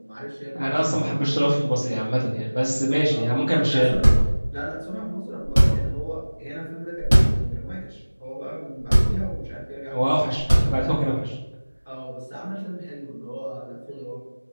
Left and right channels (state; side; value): inverted; both; correlation -1.00